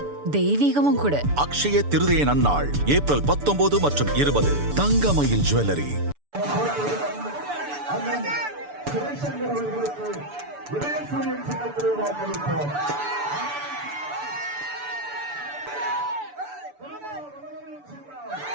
தெய்வீகமும் கூட. அக்ஷய திருதியை நன்னாள் ஏப்ரல் 19 மற்றும் 20. தங்கமயில் ஜுவல்லரி.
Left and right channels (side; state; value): left; late; 6.9 ms